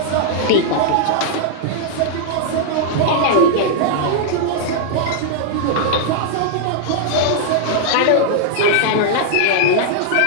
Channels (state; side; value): different; both; correlation -0.01